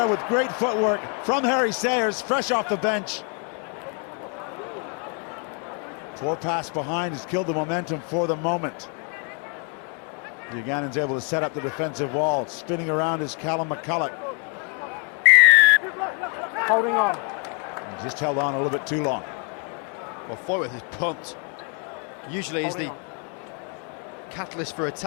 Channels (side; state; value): right; quieter; 36.5 dB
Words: with great footwork from Harry Sayers, fresh off the bench. Poor pass behind has killed the momentum for the moment. The Ugandans able to set up the defensive wall. Spinning around is Callum McCulloch. Holding on. He just held on a little bit too long. Well, Foyworth is pumped. Usually he's the catalyst for